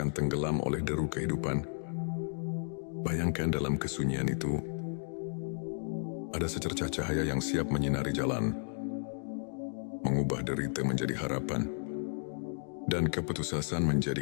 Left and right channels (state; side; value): silent; right; digital silence